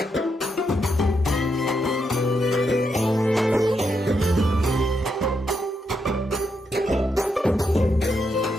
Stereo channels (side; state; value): both; normal; correlation 0.81